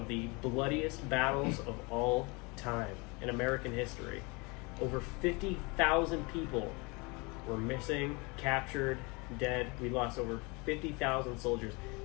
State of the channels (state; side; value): quieter; right; 28.0 dB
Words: the bloodiest battles of all time in American history. Over 50,000 people were missing, captured, dead. We lost over 50,000 soldiers.